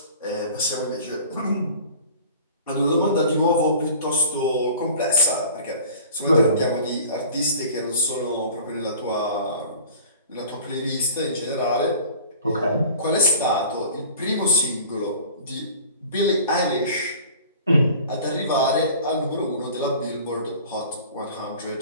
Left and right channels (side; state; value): both; inverted; correlation -0.44